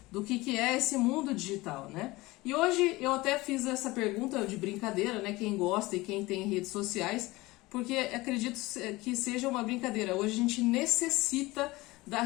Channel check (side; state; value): right; quieter; 20.8 dB